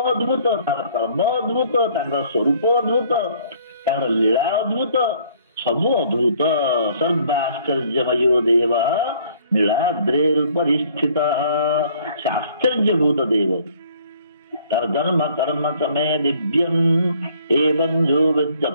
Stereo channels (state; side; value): inverted; both; correlation -0.59